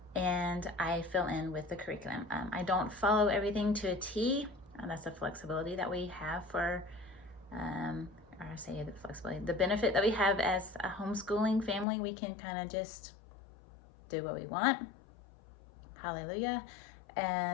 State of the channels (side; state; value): right; drops out; at 11.9 s